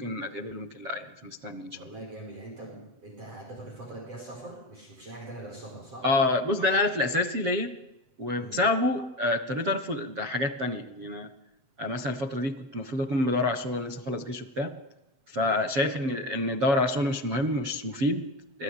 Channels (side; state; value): left; late; 7.7 ms